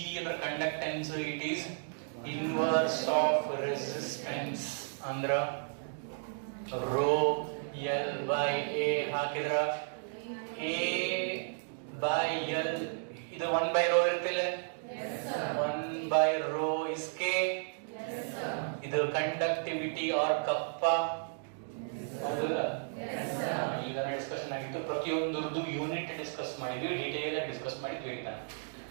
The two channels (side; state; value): left; silent; digital silence